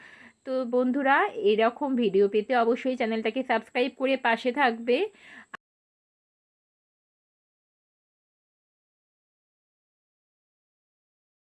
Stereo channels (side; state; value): both; identical; correlation 1.00